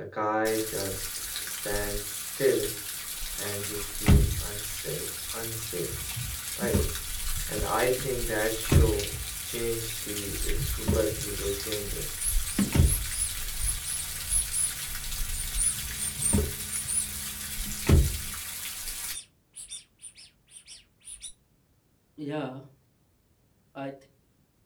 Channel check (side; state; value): both; identical; correlation 1.00